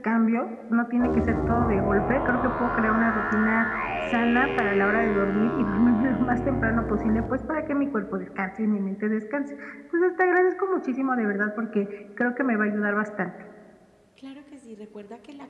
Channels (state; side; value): identical; both; correlation 1.00